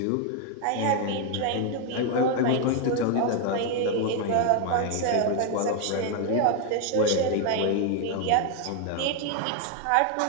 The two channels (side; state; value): both; different; correlation 0.00